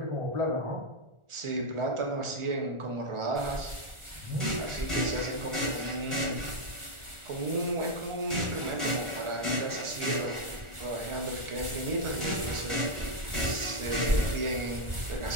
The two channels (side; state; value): left; late; 1.4 ms